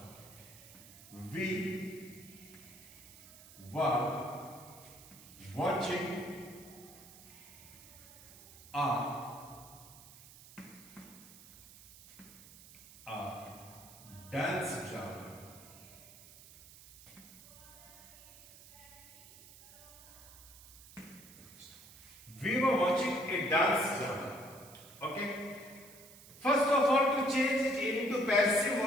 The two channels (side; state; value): right; noise; hiss, 19 dB below the sound